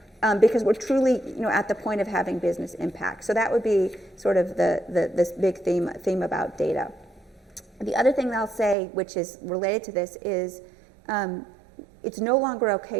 Because we're truly at the point of having business impact. So that would be sort of this big theme about data. The other thing that I'll say, which is related to this, is it's no longer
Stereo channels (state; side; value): drops out; left; at 8.8 s